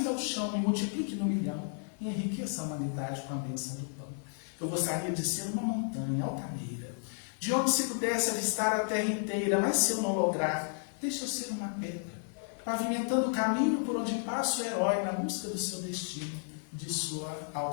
ao chão, me multiplique no milhão e enriqueça a humanidade com a bênção do pão. Eu gostaria de ser uma montanha altaneira, de onde se pudesse avistar a terra inteira, mas se eu não lograr, deixa eu ser uma pedra, pavimentando o caminho por onde passa o herói na busca do seu destino, de sua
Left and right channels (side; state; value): right; silent; 56 dB below the other